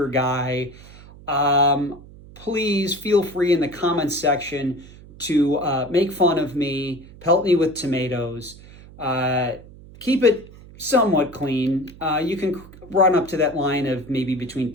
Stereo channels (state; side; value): noise; right; hum, 20 dB below the sound